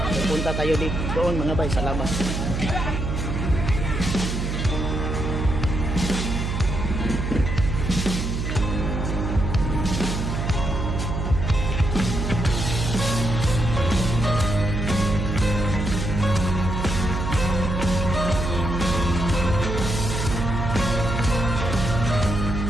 Punta tayo dito doon mga bay sa labas.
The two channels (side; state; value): right; noise; hum, 2 dB below the sound